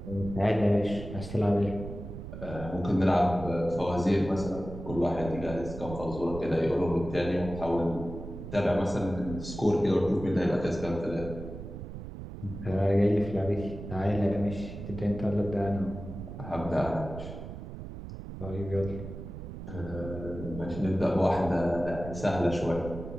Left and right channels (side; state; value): right; noise; rumble, 10 dB below the sound